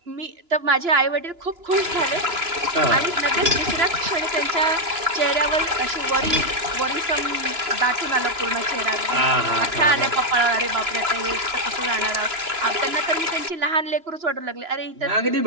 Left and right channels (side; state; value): left; late; 2.9 ms